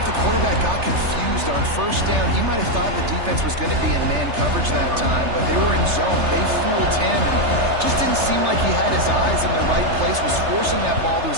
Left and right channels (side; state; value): left; late; 3.3 ms